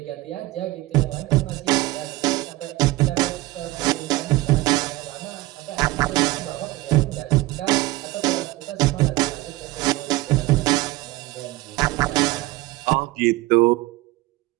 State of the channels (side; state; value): left; quieter; 19.7 dB